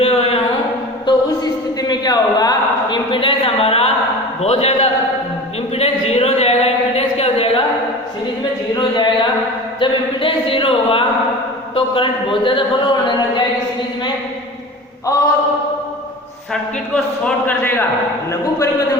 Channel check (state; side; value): normal; both; correlation 0.35